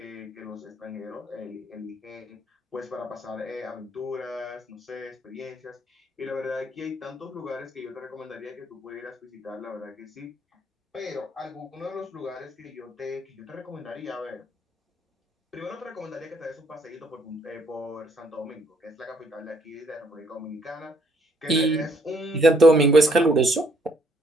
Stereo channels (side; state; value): both; normal; correlation 0.67